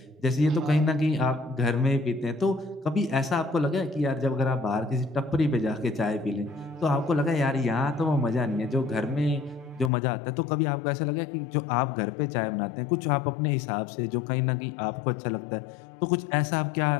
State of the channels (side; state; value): right; drops out; at 9.9 s